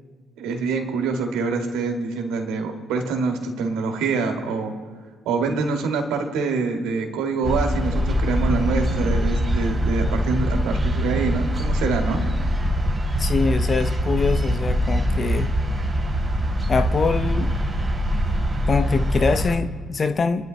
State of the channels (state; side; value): normal; both; correlation 0.77